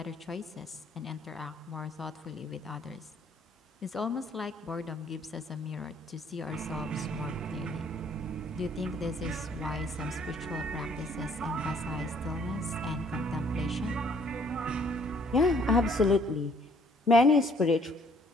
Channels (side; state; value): both; normal; correlation 0.62